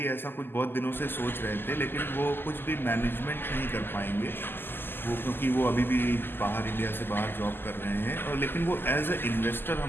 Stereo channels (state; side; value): late; right; 0.099 ms